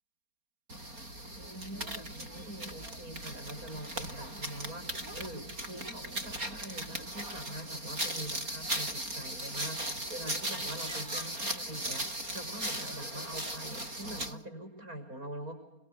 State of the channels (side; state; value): left; late; 4.3 ms